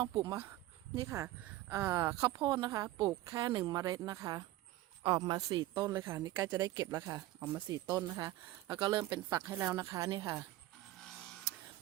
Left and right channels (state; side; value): quieter; left; 16.2 dB